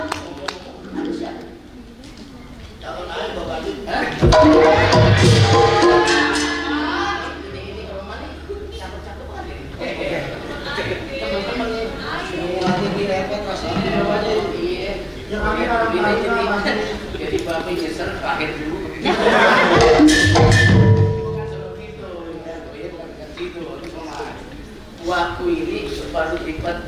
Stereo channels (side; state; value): both; identical; correlation 1.00